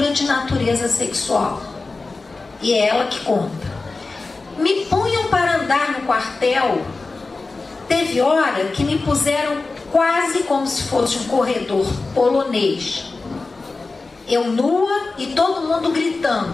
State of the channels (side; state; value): right; quieter; 3.7 dB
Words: de natureza sexual. E é ela que conta. Me punham para andar no quartel. Teve hora que me puseram quase como se fosse um corredor polonês. Eu nua e todo mundo